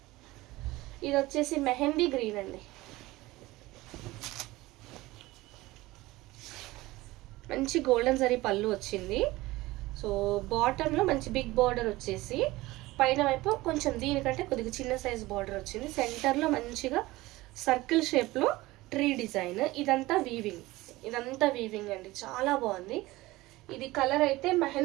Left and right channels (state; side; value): quieter; left; 19.2 dB